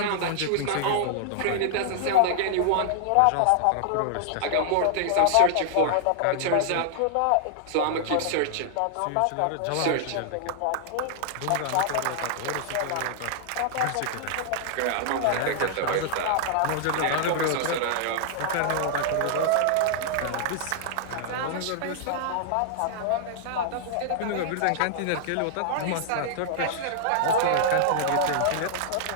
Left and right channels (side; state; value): both; different; correlation -0.01